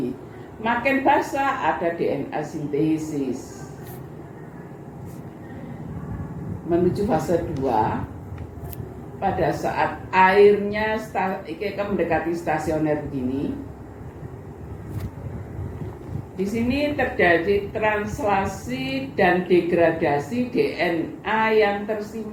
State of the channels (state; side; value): identical; both; correlation 1.00